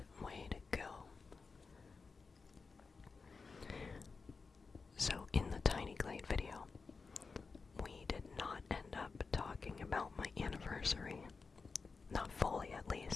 way to go. So in the Tiny Glade video, we did not end up talking about my anniversary. Not fully, at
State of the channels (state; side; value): quieter; right; 4.6 dB